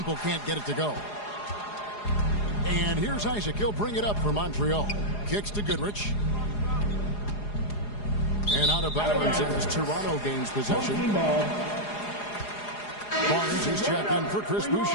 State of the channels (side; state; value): right; late; 4.8 ms